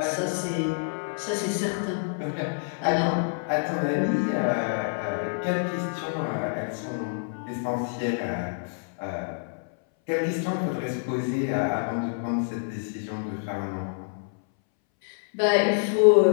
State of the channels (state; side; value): silent; right; 60 dB below the other